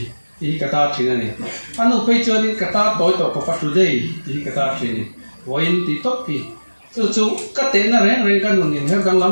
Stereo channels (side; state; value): both; inverted; correlation -1.00